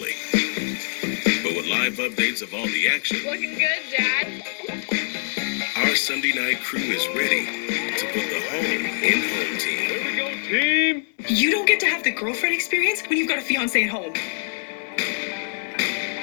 But with live updates of all the action, Looking good, Dad. our Sunday night crew is ready to put the home in home team. Here we go, team. You don't get to have the girlfriend experience when you've got a fiance at home.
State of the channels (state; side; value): silent; right; digital silence